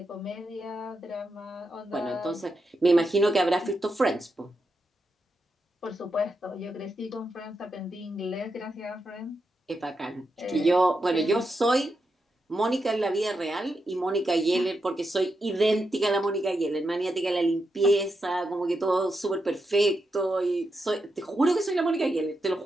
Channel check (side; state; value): both; normal; correlation 0.85